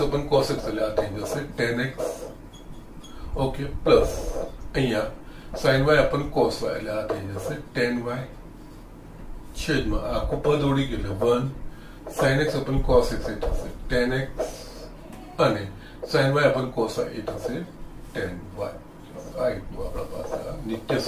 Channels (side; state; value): both; identical; correlation 1.00